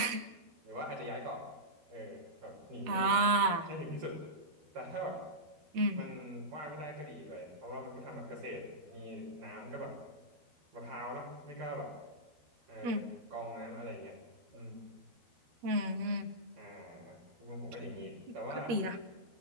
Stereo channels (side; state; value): left; late; 13 ms